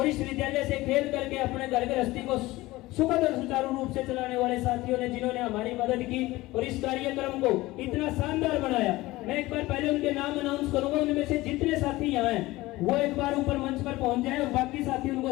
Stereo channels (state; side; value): quieter; right; 19.0 dB